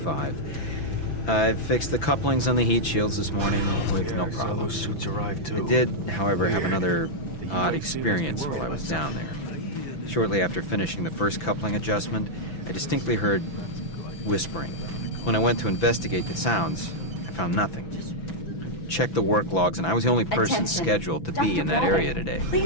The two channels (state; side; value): late; right; 5.9 ms